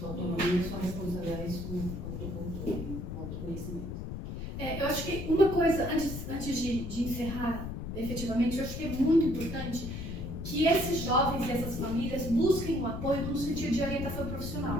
autonomia, sua responsabilidade, seu autocontrole, autoconhecimento. Eu acho que uma coisa, antes de encerrar efetivamente, eu acho que é muito importante que esses jovens e essas famílias busquem um apoio no sentido de orientação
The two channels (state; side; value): noise; left; rumble, 6 dB below the sound